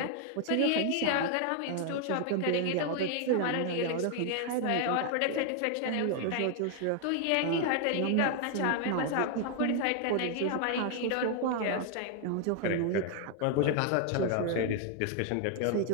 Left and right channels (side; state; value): both; different; correlation 0.01